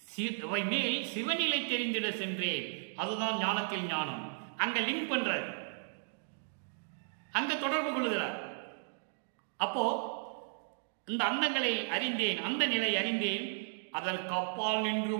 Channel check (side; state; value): left; silent; digital silence